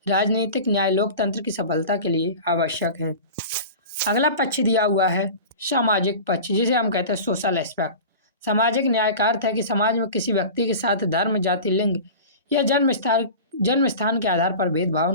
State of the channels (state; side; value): inverted; both; correlation -0.35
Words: राजनीतिक न्याय लोकतंत्र की सफलता के लिए आवश्यक है। अगला पक्ष दिया हुआ है सामाजिक पक्ष, जिसे हम कहते हैं सोशल एस्पेक्ट। सामाजिक न्याय का अर्थ है कि समाज में किसी व्यक्ति के साथ धर्म, जाति, लिंग या जन्म स्थान के आधार पर भेदभाव